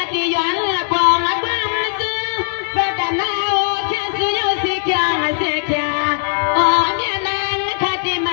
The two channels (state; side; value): silent; right; digital silence